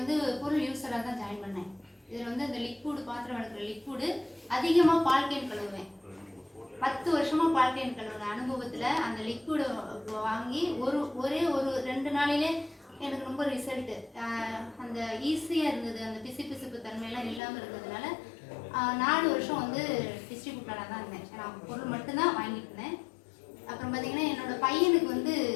பொருள் யூஸராக தான் ஜாயின் பண்ணேன். இதில் வந்து இந்த லிக்விடு, பாத்திரம் வளர்க்குற லிக்விடு, அதிகமாக பால் கேன் கழுவுவேன். 10 வருஷமாக பால் கேன் கழுவுன அனுபவத்தில் அந்த லிக்விடு வாங்கி ஒரே ஒரு 2 நாளிலே எனக்கு ரொம்ப ரிசல்ட்டு. அந்த ஈஸியாக இருந்தது, அந்த பிசுப்பு தன்மையெல்லாம் இல்லாமல் இருந்ததுனால 4 வருஷம் வந்து டிஸ்ட்ரிபியூட்டராக தான் இருந்தேன். நான் பொருள் மட்டும்தான் வாங்கிட்டு இருந்தேன். அப்புறம் பார்த்தீங்கன்னா என்னோடய பையனுக்கு வந்து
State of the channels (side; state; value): right; drops out; at 17.4 s